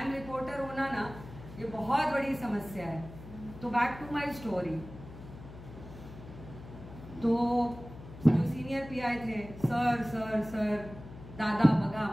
रिपोर्टर होना ना ये बहुत बड़ी समस्या है। तो बैक टू माय स्टोरी। तो जो सीनियर पीआय थे, सर दादा बघा,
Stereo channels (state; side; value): noise; left; hum, 15 dB below the sound